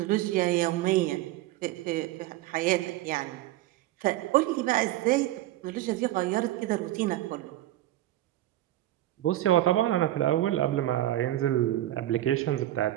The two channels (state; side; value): quieter; left; 14.8 dB